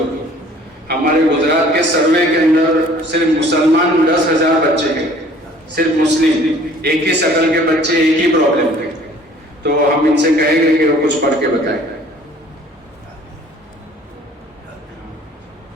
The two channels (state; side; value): normal; both; correlation 0.53